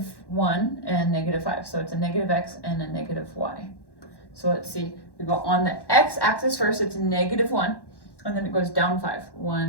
and -5. So it's a -X and a -Y. So let's see, we go on the X axis first, it's -1, and then it goes down 5.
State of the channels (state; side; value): late; right; 1.1 ms